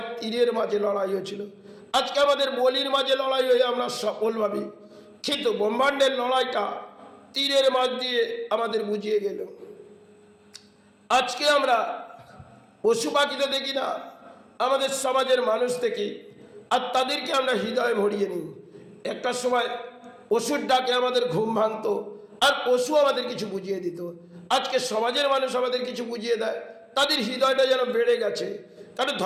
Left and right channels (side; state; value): both; identical; correlation 1.00